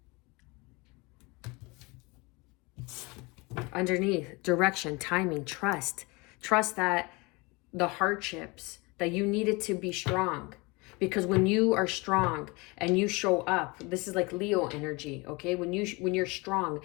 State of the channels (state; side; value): quieter; right; 26.1 dB